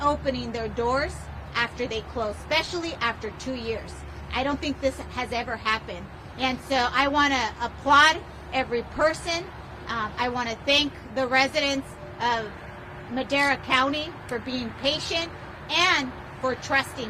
their doors after they closed, especially after 2 years. I don't think this has ever happened. And so I want to applaud every person. I want to thank the residents of Madera County for being patient and for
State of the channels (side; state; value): both; identical; correlation 1.00